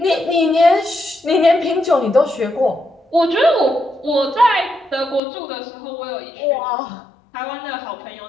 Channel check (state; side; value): drops out; right; at 5.2 s